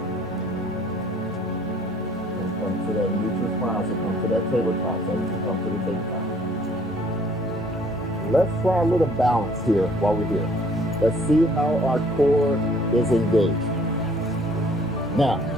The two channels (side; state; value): both; normal; correlation 0.58